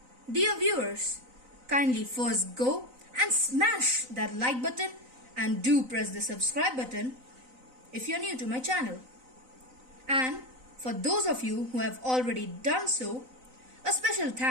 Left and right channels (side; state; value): left; late; 3.9 ms